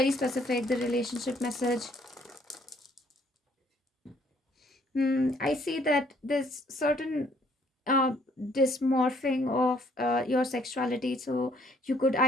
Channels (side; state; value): both; normal; correlation 0.64